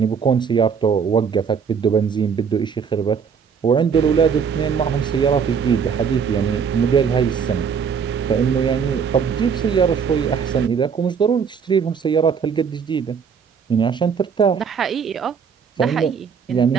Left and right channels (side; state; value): left; quieter; 6.6 dB